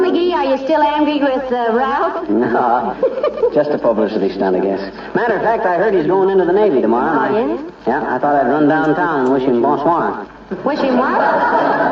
are you still angry with Ralph? No, just a publicity stunt, I guess. Matter of fact, I heard he's going into the Navy tomorrow. Oh, yeah? Yeah, I thought I'd run downtown and wish him bonsoir. Wish him what?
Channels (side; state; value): both; identical; correlation 1.00